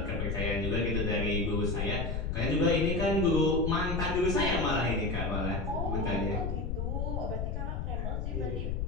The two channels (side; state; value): left; noise; rumble, 2 dB below the sound